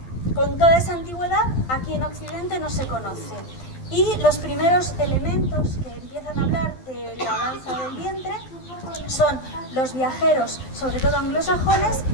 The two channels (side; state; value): right; late; 12 ms